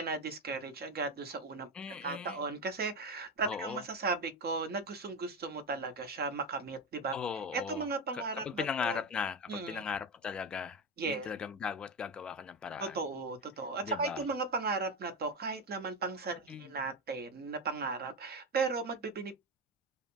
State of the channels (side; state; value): both; normal; correlation 0.17